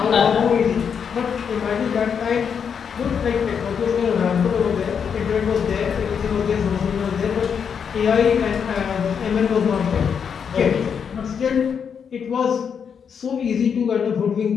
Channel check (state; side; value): quieter; right; 7.0 dB